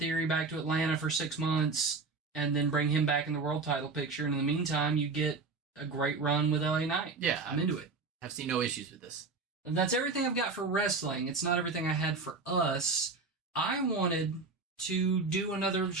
back to Atlanta for 6 months, and then bring him back in the world title picture. And in the meantime, you get a great run with LA Knight. Yeah. I'm into it. I've seen no issues with this. And that's everything I've got for wrestling. It's not everything I had for us. I wanted to do another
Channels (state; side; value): quieter; left; 4.1 dB